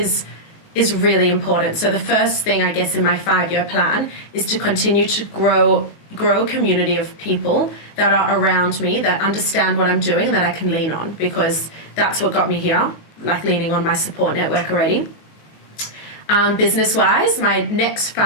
really important. So the first thing, I guess, in my 5-year plan is to continue to grow a community of people that are around me, that understand what I'm doing and that I can lean on, because that's what got me here, like leaning on my support network already. Business-wise, my next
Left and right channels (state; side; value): late; right; 19 ms